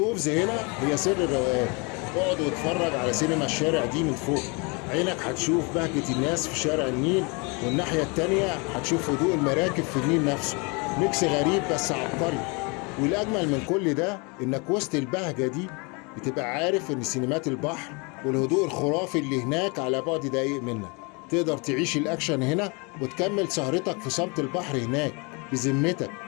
هنا هي سر الروقان. اقعد واتفرج على سينما الشارع دي من فوق. عينك هتشوف بهجة الناس في شارع النيل، والناحية التانية هتشوف هدوء المراكب في النيل نفسه. ميكس غريب بس عبقري. والأجمل من كل ده إنك وسط البهجة دي بتبقى عارف إن سينمات البحر والهدوء الخرافي اللي هناك على بعد دقايق منك. تقدر تعيش الأكشن هنا وتكمل سهرتك في صمت البحر هناك. بذمتك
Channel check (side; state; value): right; quieter; 30.6 dB